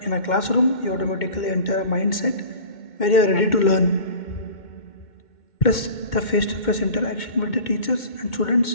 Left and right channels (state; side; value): late; right; 2.2 ms